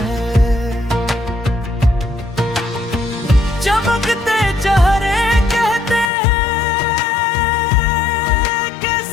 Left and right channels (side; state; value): right; drops out; at 6.1 s